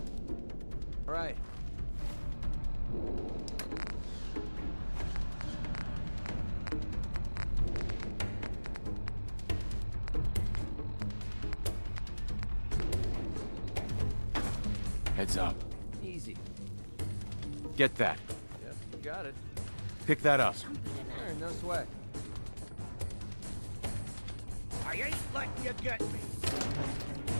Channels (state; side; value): inverted; both; correlation -1.00